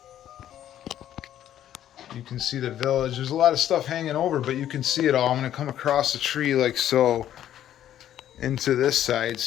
You can see the village. There's a lot of stuff hanging over, but you can see it all. I'm going to come across the tree like so into this side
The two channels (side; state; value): right; quieter; 11.3 dB